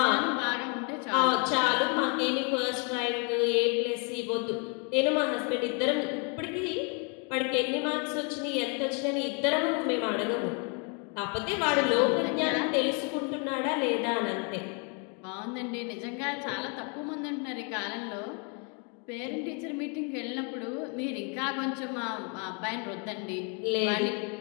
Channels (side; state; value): right; quieter; 36.8 dB